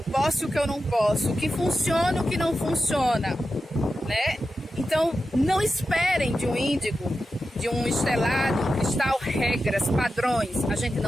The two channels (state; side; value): normal; both; correlation 0.91